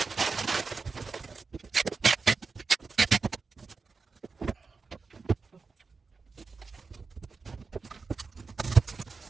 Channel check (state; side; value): quieter; left; 4.6 dB